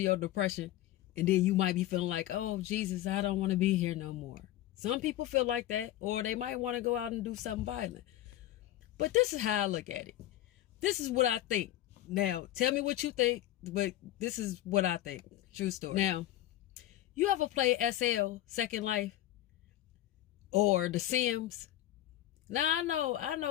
depression and then you might be feeling like, oh, Jesus, I don't want to be here no more. Some people feel like that, or they might want to go out and do something violent. But this is how I look at it. This is what I think. Now, tell me what you think, but this is what I think. True story. Now, you ever play SL, Second Life, or the SIMS? Now, I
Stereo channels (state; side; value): quieter; right; 14.0 dB